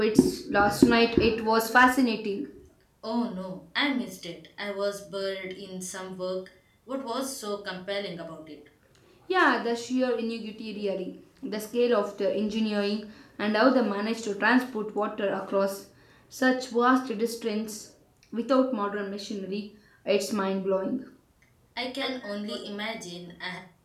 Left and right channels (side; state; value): both; identical; correlation 1.00